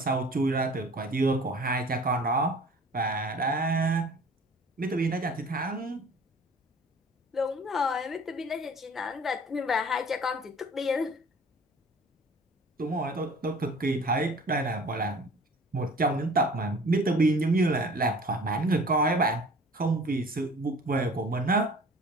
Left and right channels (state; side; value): normal; both; correlation 0.47